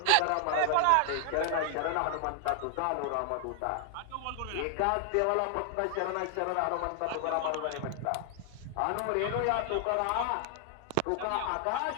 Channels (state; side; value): different; both; correlation 0.00